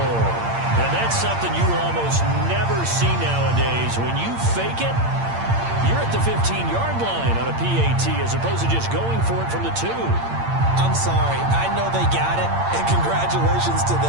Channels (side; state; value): left; late; 8.7 ms